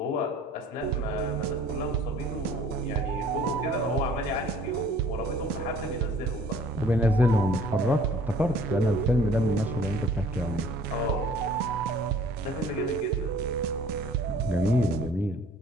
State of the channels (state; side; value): normal; both; correlation 0.53